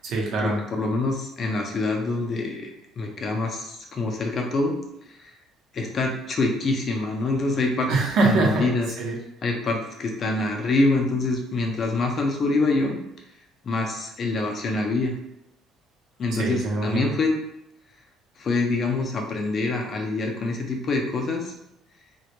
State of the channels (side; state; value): both; normal; correlation 0.69